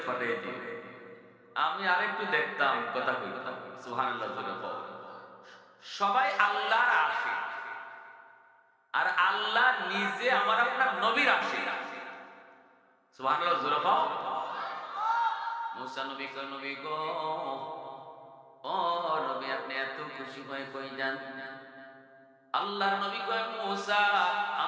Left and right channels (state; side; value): identical; both; correlation 1.00